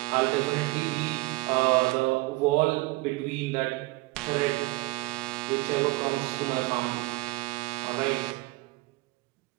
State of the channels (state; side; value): quieter; left; 22.9 dB